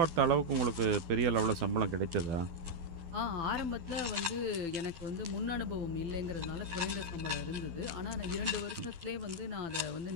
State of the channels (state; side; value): late; left; 12 ms